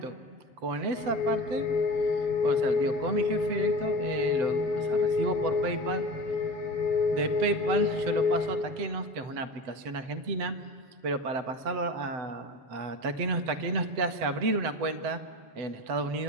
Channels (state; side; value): late; left; 7.9 ms